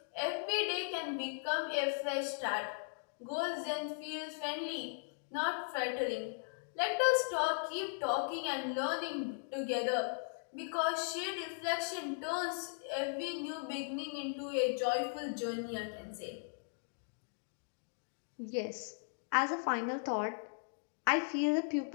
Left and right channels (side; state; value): right; silent; digital silence